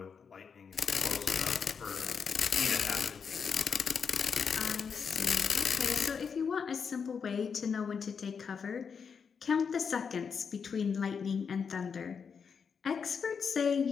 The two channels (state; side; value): quieter; right; 6.2 dB